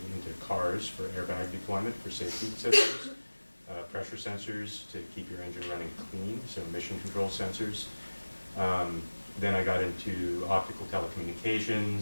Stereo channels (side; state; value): both; inverted; correlation -1.00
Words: cars for airbag deployment for safety systems. Pressure sensors to keep your engine running clean, so emission control sensors. Then I got into optical